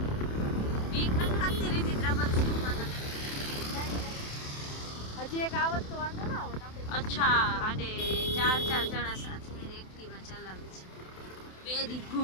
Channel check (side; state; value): right; late; 27 ms